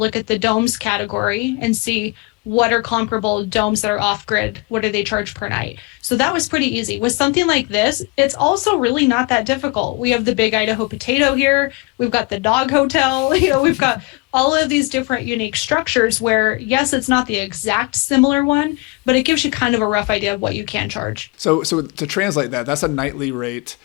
at the domes category and see what are comparable domes that are off grid. What do they charge per night? So that was pretty easy. With something like this, it's also really not that difficult. We have the big Idaho potato here. We've got the dog hotel. We've got all of these different unique structures where, yes, it's not the exact similar one, but it gives you kind of a rough idea of what you can charge. So to translate that, that's a nightly rate.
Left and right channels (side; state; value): right; quieter; 28.0 dB